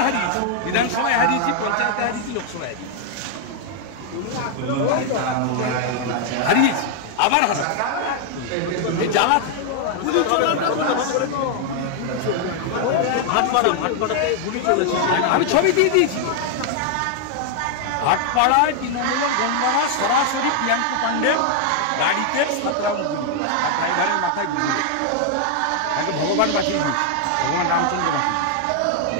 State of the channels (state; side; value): different; both; correlation 0.00